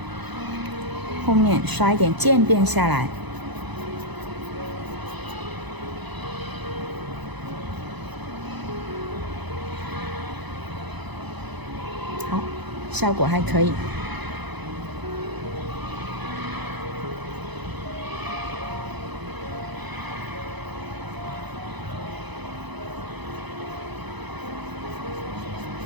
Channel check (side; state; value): left; late; 1.0 ms